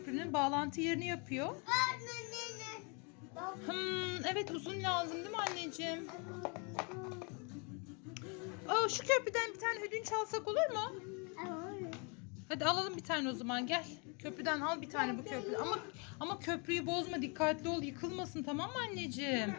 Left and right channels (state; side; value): quieter; right; 33.8 dB